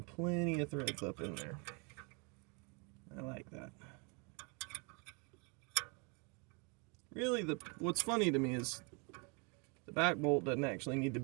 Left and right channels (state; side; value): quieter; left; 33.3 dB